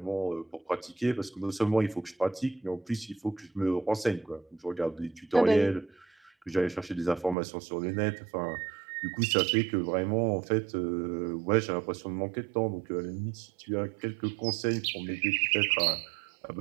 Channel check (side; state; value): left; drops out; at 7.4 s